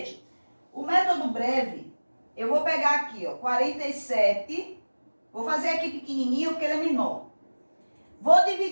o método breve, eu vou pegar aqui, ó, 47. Vou fazer aqui pequenininho porque ele é menor. Vou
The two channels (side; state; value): both; inverted; correlation -1.00